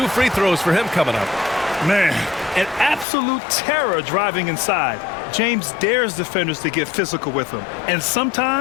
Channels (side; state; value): right; drops out; at 3.1 s